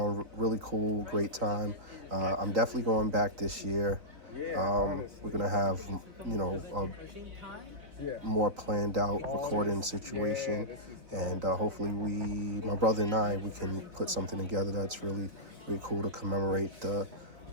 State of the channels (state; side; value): late; left; 3.8 ms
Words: really cool, great time. I'm definitely going back this year. We're gonna have, a more planned out recording situation, and hopefully my brother and I, we can put something together that's really cool to commemorate the